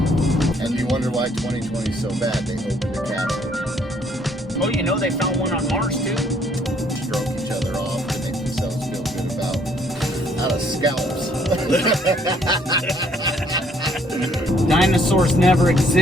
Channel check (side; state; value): both; normal; correlation 0.65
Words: And you wonder why 2020 is so bad. They opened the capsule. Oh, you know they found one on Mars too. Stroke each other off to make themselves feel good about out of scalps. Dinosaurs never